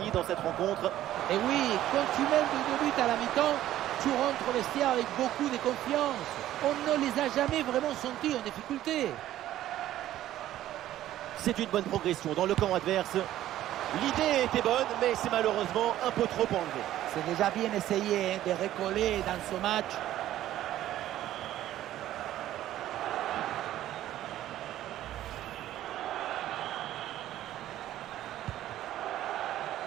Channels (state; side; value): quieter; left; 13.3 dB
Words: dans cette rencontre. Et oui, quand tu mènes de 2 buts à la mi-temps, tu rentres au vestiaire avec beaucoup de confiance. On ne les a jamais vraiment sentis en difficulté. C'est une bonne progression dans le camp adverse. L'idée était bonne, mais c'est malheureusement un peu trop enlevé. C'est déjà bien essayé de recoller dans ce match.